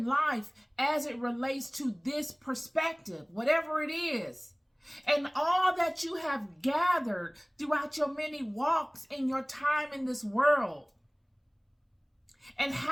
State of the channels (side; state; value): both; identical; correlation 1.00